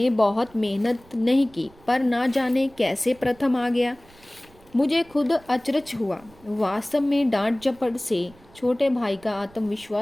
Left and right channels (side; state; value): right; noise; rumble, 26 dB below the sound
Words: बहुत मेहनत नहीं की पर ना जाने कैसे प्रथम आ गया। मुझे खुद अचरज हुआ। वास्तव में डांट झपट से छोटे भाई का